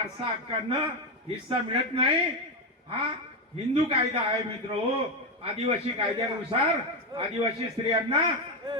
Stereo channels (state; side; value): normal; both; correlation 0.09